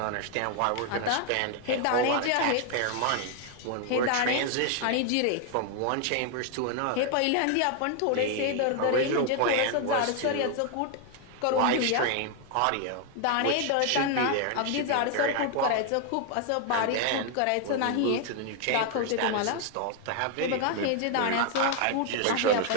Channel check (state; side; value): different; both; correlation 0.00